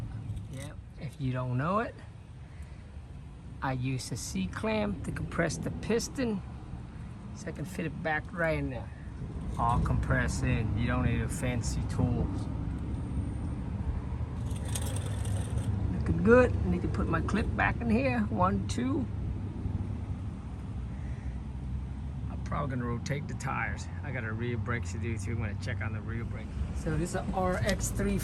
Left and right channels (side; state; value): both; identical; correlation 1.00